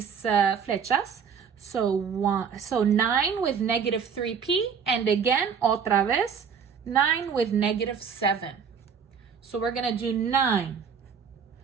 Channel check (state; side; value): quieter; left; 6.7 dB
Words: flechas. So 9 with -3p, and again, otra vez, 9 with -7. So we're going to do 9,